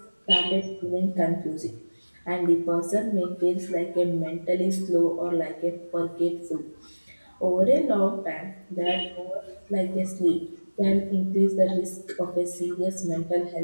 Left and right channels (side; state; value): both; inverted; correlation -1.00